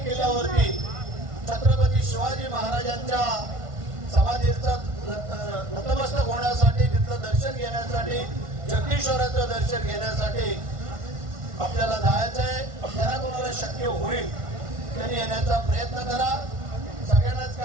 किल्ल्यावरती छत्रपती शिवाजी महाराजांच्या समाधीचं नतमस्तक होण्यासाठी, तिथलं दर्शन घेण्यासाठी, जगदीश्वराचं दर्शन घेण्यासाठी आपल्याला जायचं आहे. ज्यांना कोणाला शक्य होईल त्यांनी येण्याचा प्रयत्न करा. सगळ्यांनाच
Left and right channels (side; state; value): left; late; 1.5 ms